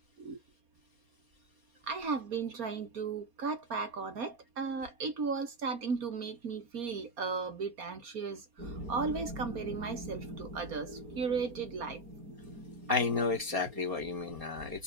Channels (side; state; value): left; late; 4.3 ms